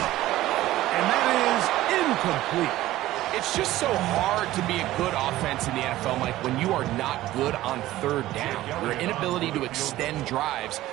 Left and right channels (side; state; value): left; quieter; 15.6 dB